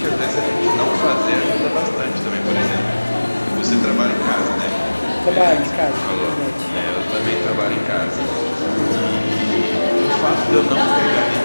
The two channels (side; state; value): both; inverted; correlation -1.00